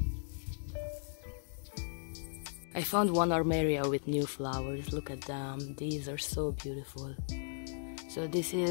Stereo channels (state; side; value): silent; right; digital silence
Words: I found one Armeria with new flowers, look at them, these are so beautiful. So this